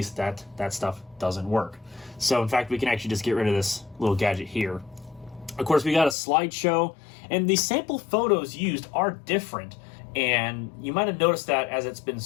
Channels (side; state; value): right; drops out; at 6.2 s